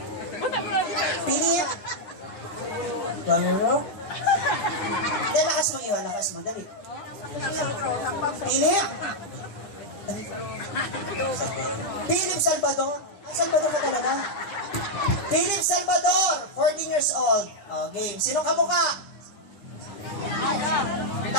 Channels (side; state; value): right; late; 9.9 ms